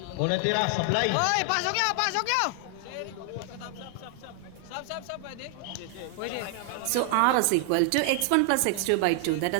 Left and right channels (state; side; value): different; both; correlation 0.00